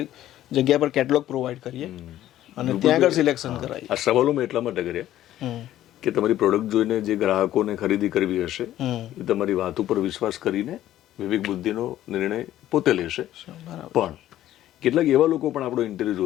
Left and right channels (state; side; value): quieter; right; 13.1 dB